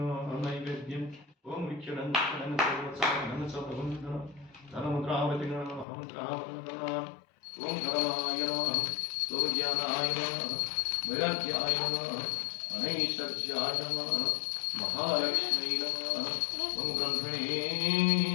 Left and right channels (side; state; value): right; drops out; at 5.9 s